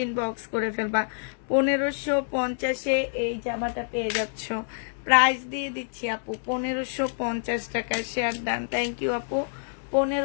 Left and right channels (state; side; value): silent; right; digital silence